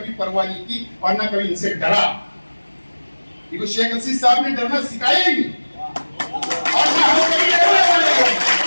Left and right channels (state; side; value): inverted; both; correlation -1.00